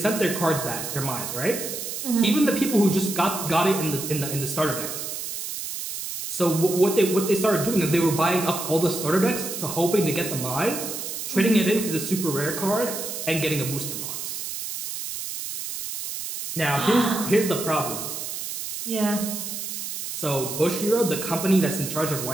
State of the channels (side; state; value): right; noise; hiss, 6 dB below the sound